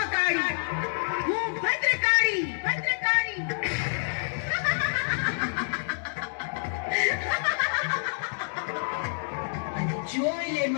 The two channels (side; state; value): right; silent; digital silence